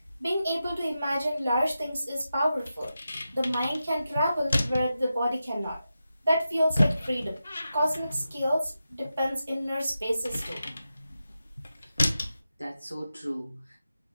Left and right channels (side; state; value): both; inverted; correlation -0.90